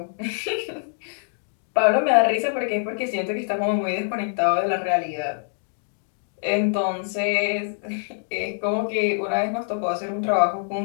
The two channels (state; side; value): silent; right; digital silence